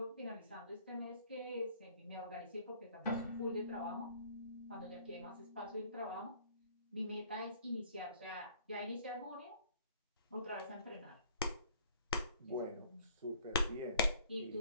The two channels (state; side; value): inverted; both; correlation -0.55